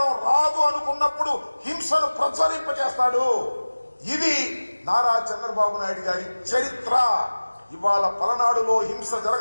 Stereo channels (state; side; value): inverted; both; correlation -1.00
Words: రాదు అనుకున్నప్పుడు హింసను ప్రచురింపచేస్తాడు. ఇది నారా చంద్రబాబు నాయుడు గారి చరిత్ర. ఇవాళ పలనాడులో హింస